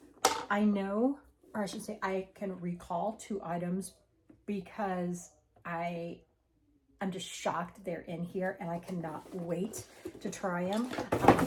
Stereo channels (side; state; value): both; identical; correlation 1.00